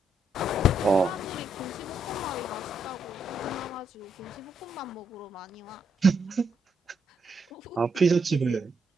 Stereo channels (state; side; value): normal; both; correlation 0.77